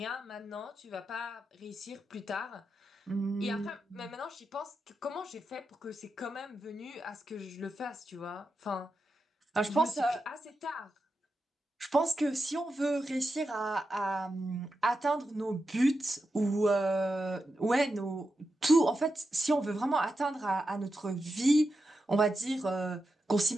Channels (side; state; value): both; normal; correlation 0.88